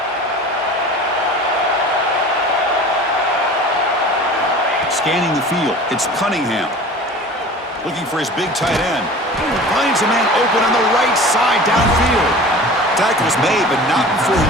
Scanning the field, it's Cunningham. Looking for his big tight end. Finds a man open on the right side downfield. Tackle's made, but not before he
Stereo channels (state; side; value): normal; both; correlation 0.40